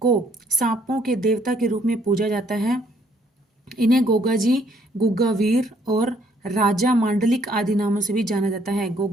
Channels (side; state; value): both; normal; correlation 0.66